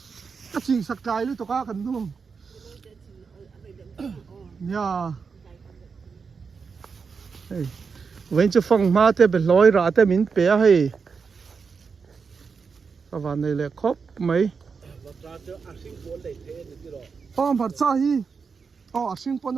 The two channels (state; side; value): quieter; left; 5.4 dB